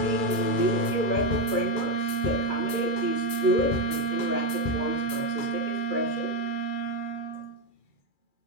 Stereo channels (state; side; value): late; right; 2.3 ms